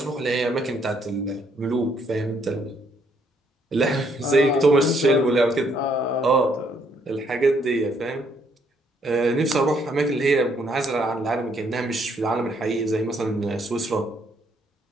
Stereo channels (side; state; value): both; normal; correlation 0.70